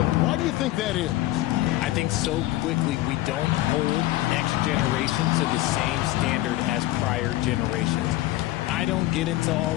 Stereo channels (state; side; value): quieter; right; 16.4 dB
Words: Why do you think that is? I think so quickly we don't hold next generation to the same standard as prior generations. I I don't get into